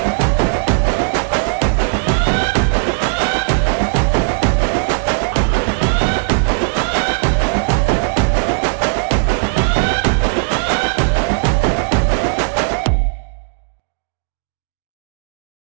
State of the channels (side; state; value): left; silent; digital silence